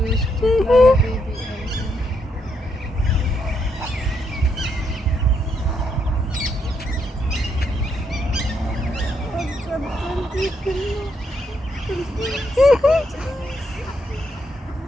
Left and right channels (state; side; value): normal; both; correlation 0.77